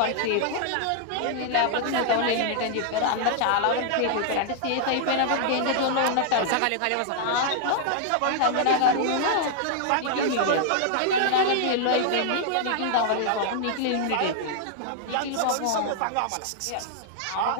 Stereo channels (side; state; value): both; different; correlation -0.01